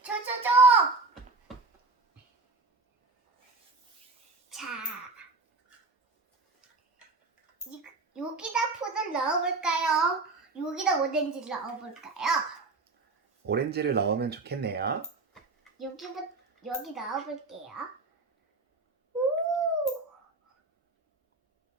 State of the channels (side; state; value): left; quieter; 3.6 dB